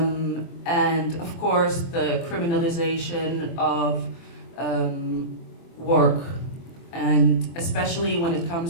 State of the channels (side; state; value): right; late; 24 ms